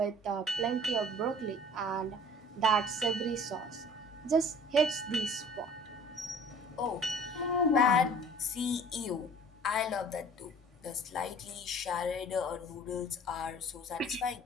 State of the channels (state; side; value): normal; both; correlation 0.47